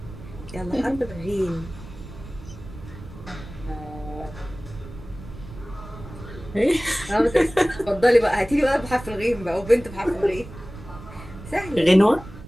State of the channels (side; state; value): right; noise; rumble, 15 dB below the sound